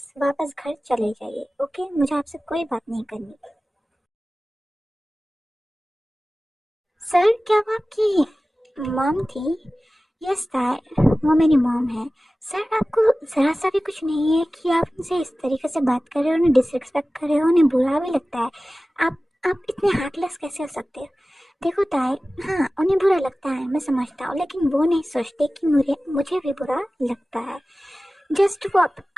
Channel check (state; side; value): normal; both; correlation 0.96